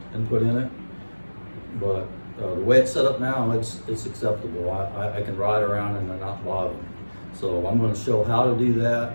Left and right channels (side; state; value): both; inverted; correlation -1.00